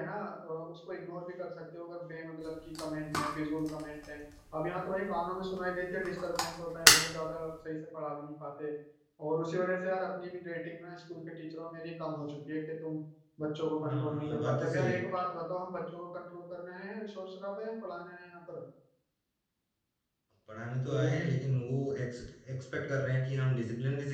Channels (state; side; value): identical; both; correlation 1.00